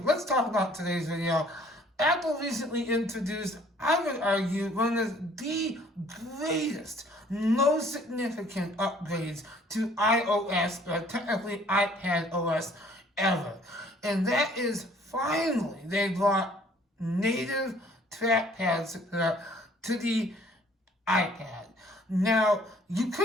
let's talk about today's video. Apple recently introduced, I would argue, one of the greatest, most significant upgrades to iOS, or technically iPad OS, ever. And that is finally they brought native trackpad support to the iPad. Now, you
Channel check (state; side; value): normal; both; correlation 0.57